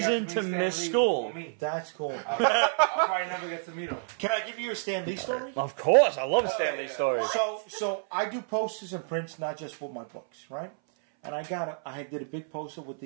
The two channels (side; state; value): left; silent; 58 dB below the other